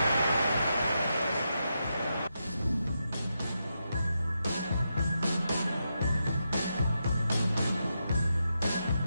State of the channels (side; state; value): both; inverted; correlation -0.86